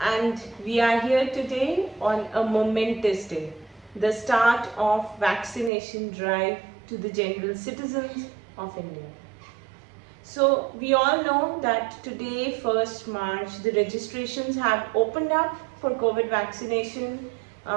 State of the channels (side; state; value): left; drops out; at 5.7 s